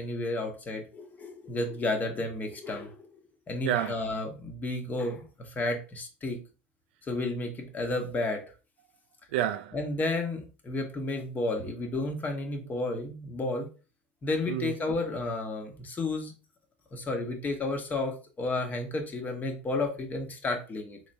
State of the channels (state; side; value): normal; both; correlation 0.50